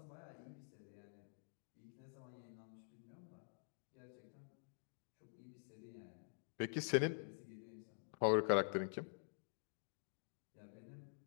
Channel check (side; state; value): right; silent; digital silence